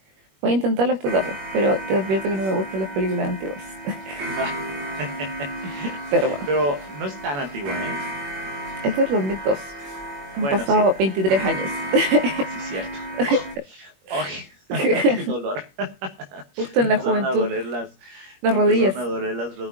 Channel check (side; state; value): left; late; 21 ms